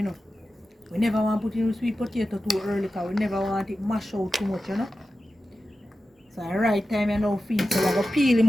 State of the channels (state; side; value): normal; both; correlation 0.93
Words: know. We never want to put in sweet potato too early because we never want it mash out too much, you know. So the right time you now feed. So we're going to peel